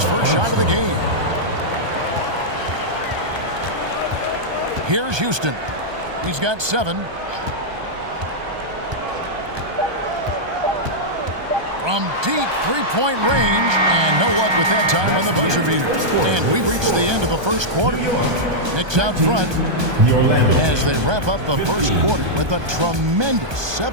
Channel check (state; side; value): late; left; 1.2 ms